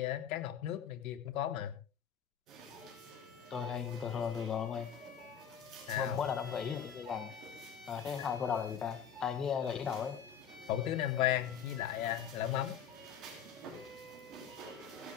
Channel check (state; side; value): quieter; right; 8.3 dB